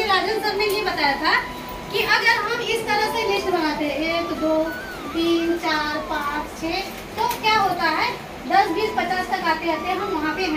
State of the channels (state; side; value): identical; both; correlation 1.00